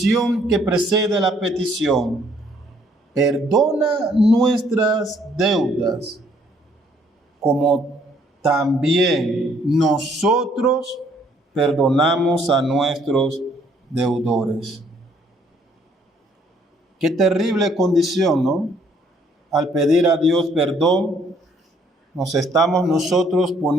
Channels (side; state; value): both; normal; correlation 0.65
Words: que precede la petición. Perdona nuestras deudas, como también nosotros perdonamos a nuestros deudores. Qué terrible condición, ¿no? Al pedir a Dios perdón, nos estamos nosotros